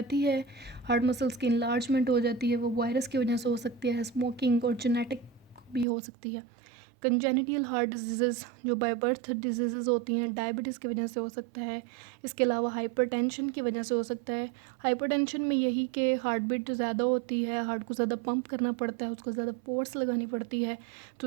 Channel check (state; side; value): drops out; left; at 5.9 s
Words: है, हार्ट मसल्स की इनलार्जमेंट हो जाती है, वो वायरस की वजह से हो सकती है, स्मोकिंग और जेनेटिक भी हो सकती है। कंजेनिटल हार्ट डिजीज़ जो बाय बर्थ डिजीज़ होती हैं, डायबिटीज़ की वजह से हो सकता है। इसके अलावा हाइपरटेंशन की वजह से हो सकता है। हाइपरटेंशन में यही कि हार्ट बीट ज़्यादा होती है, हार्ट को ज़्यादा पंप करना पड़ता है, उसको ज़्यादा फोर्स लगानी पड़ती है,